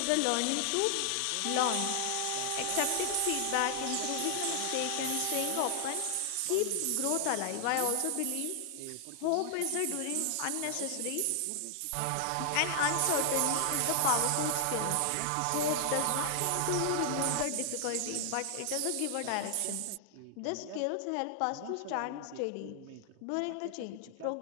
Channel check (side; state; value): both; different; correlation 0.00